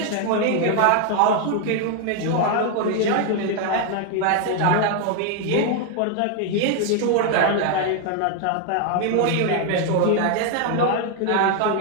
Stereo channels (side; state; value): both; different; correlation 0.00